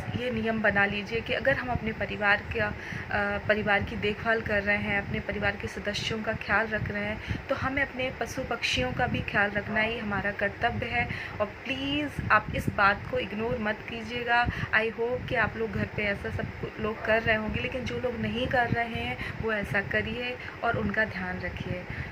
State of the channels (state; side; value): identical; both; correlation 1.00